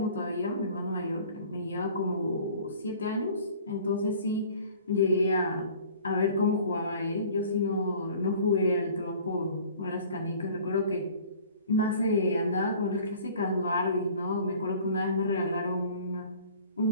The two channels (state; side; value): inverted; both; correlation -0.48